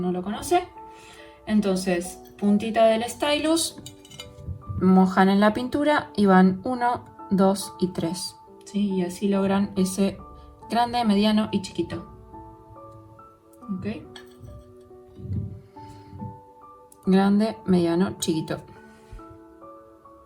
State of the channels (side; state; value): both; identical; correlation 1.00